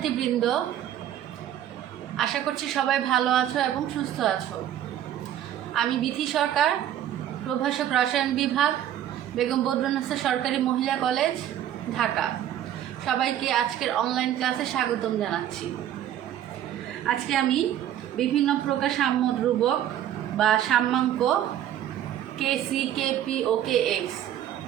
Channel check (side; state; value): left; quieter; 11.3 dB